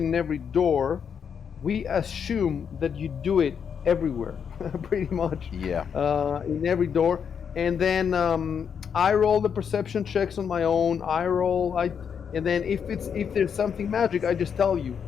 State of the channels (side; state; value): right; quieter; 7.2 dB